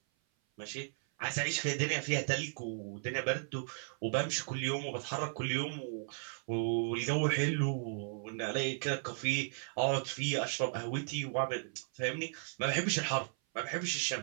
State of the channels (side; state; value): left; silent; 54 dB below the other